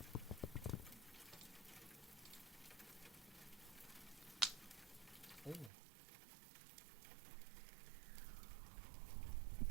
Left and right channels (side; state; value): left; drops out; at 5.7 s